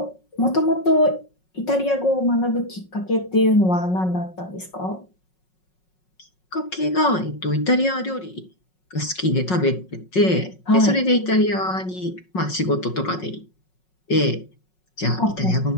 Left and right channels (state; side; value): late; right; 5.4 ms